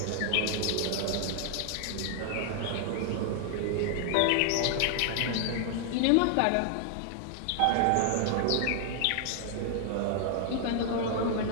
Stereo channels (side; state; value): both; different; correlation 0.00